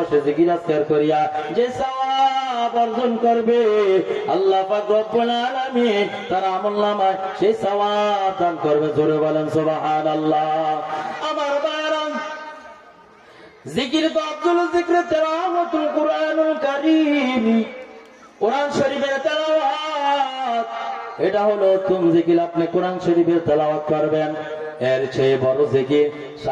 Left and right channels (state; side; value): identical; both; correlation 1.00